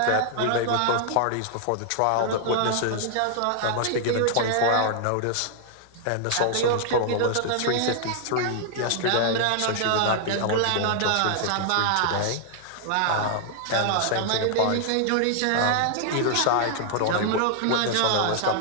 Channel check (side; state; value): both; different; correlation 0.00